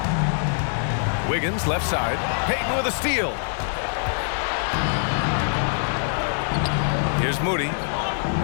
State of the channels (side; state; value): right; silent; digital silence